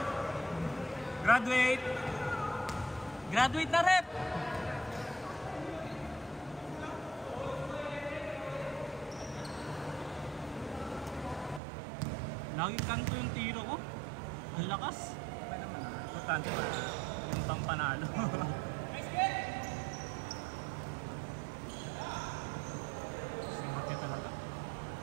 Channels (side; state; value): left; drops out; at 11.6 s